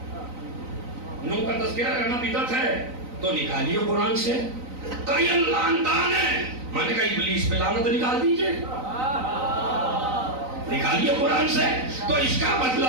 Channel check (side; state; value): left; late; 3.9 ms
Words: نوح کا تذکرہ کرنا بدعت ہے تو نکالیے قرآن سے. کئی لعنتان ہے، میں نے کہا ابلیس پہ لعنت نکال دیجئے، نکالیے قرآن سے. تو اس کا